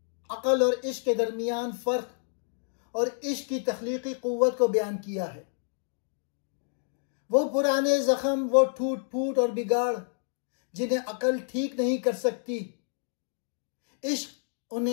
अकल और इश्क के दरमियान फ़र्क और इश्क की तख्लीकी क़ुव्वत को बयान किया है। वो पुराने ज़ख्म, वो टूट फूट और बिगाड़ जिन्हें अकल ठीक नहीं कर सकती, इश्क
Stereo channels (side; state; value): right; silent; 59 dB below the other